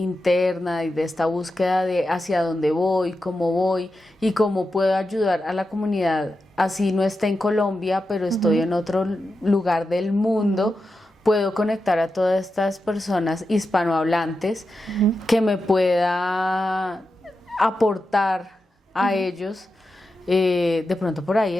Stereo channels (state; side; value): normal; both; correlation 0.89